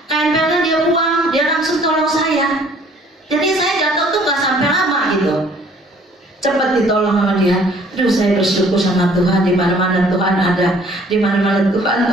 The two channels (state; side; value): normal; both; correlation 0.57